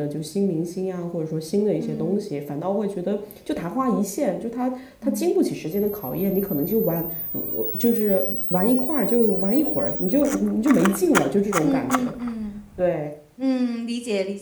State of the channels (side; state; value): both; identical; correlation 1.00